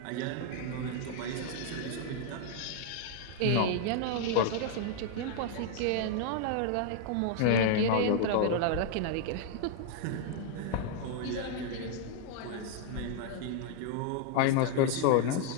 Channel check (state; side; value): different; both; correlation 0.00